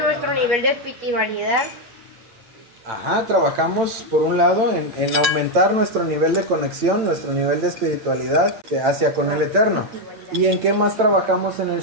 nuestro nivel de espiritualidad. Trabajamos por un lado en aumentar nuestro nivel de conexión, nuestro nivel de espiritualidad hacia con el Eterno. ¿Y en qué más trabajamos en el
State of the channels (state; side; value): late; left; 8.9 ms